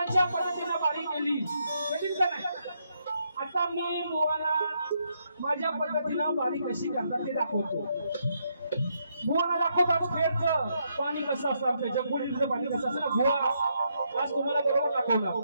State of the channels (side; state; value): both; inverted; correlation -0.77